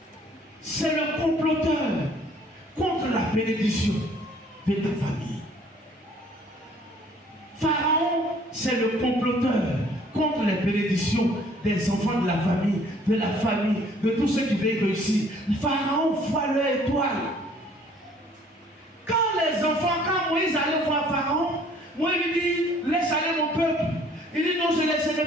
c'est le comploteur contre la bénédiction de ta famille. Pharaon, c'est le comploteur contre les bénédictions des enfants de la famille, de tous ceux qui veulent réussir. Pharaon voit leur étoile. Quand Moïse allait voir Pharaon, Moïse lui dit, laisse aller mon peuple. Il dit, non, je ne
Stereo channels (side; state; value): both; normal; correlation 0.58